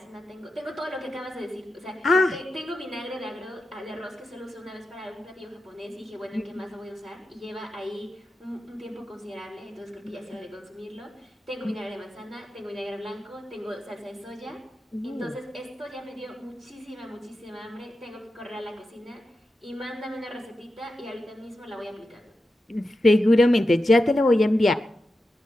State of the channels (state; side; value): normal; both; correlation 0.90